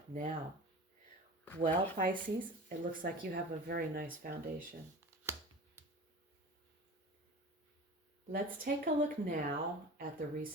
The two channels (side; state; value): both; normal; correlation 0.36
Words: now. Well, Pisces, it looks like you have a very nice foundation. Let's take a look now at the